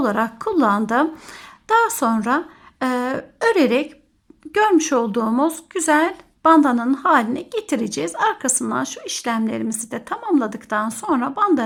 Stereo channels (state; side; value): identical; both; correlation 1.00